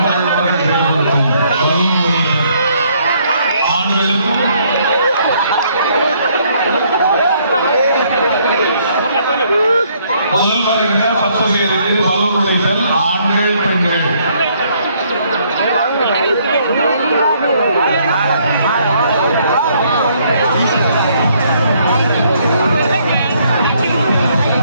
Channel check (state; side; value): inverted; both; correlation -0.67